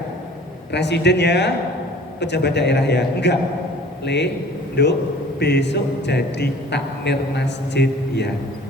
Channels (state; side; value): normal; both; correlation 0.48